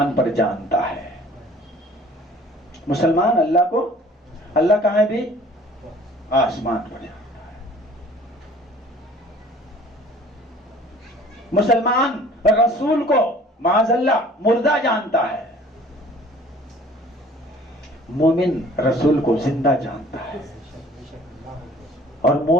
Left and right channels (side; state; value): both; normal; correlation 0.51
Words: पर जानता है, मुसलमान अल्लाह को, अल्लाह कहाँ है भी, आसमान पर जानता है। मुसलमान रसूल को माज़अल्लाह मुर्दा जानता है, मोमिन रसूल को जिंदा जानता है। और